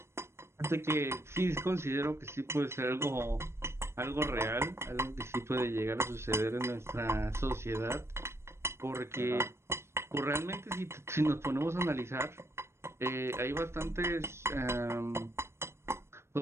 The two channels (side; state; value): left; late; 0.13 ms